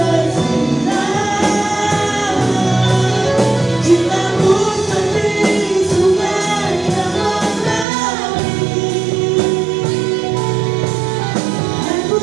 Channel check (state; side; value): drops out; left; at 7.9 s